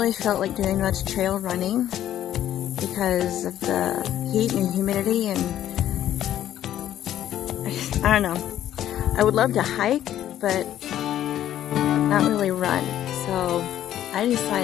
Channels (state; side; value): quieter; right; 11.8 dB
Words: felt like doing much trail running because of the heat and humidity, and I don't know. I would love to hike, but not really run. So I